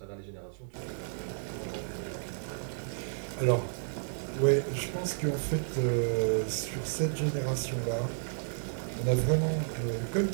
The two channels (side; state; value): left; silent; digital silence